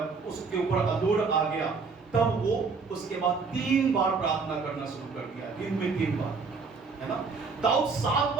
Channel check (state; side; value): quieter; left; 4.8 dB